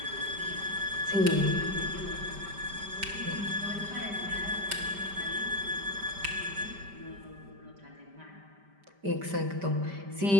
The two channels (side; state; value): left; late; 5.1 ms